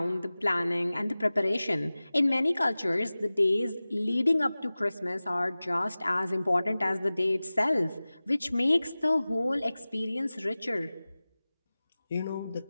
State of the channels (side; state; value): both; inverted; correlation -0.98